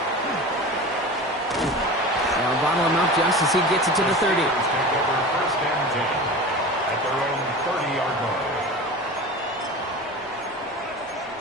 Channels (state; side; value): normal; both; correlation 0.33